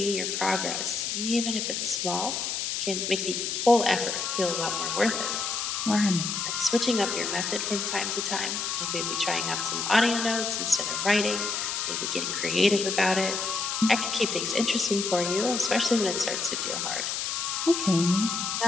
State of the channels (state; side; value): noise; left; hiss, 2 dB below the sound